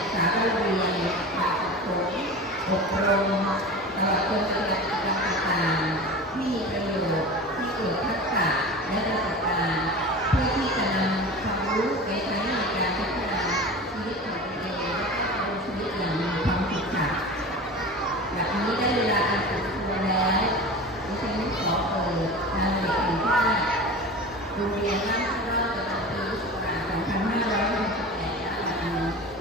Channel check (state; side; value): normal; both; correlation 0.33